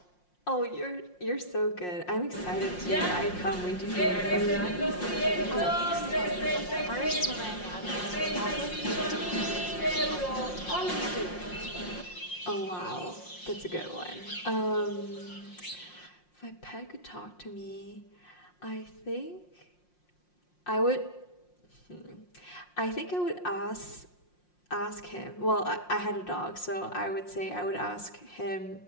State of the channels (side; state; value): right; late; 5.6 ms